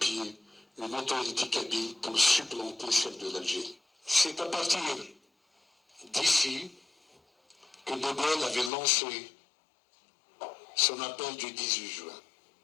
une autorité kabyle pour supplanter celle de l'Algérie. C'est à partir d'ici que De Gaulle avait lancé son appel du 18 juin.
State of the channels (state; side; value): drops out; right; at 8.7 s